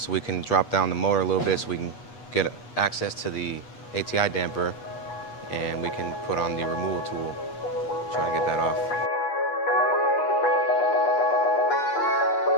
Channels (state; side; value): late; right; 8.3 ms